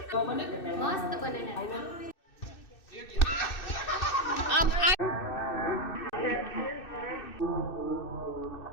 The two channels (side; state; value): right; late; 2.6 ms